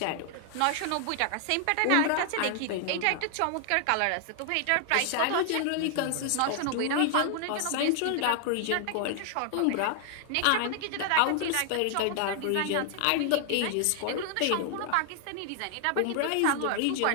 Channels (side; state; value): both; different; correlation 0.00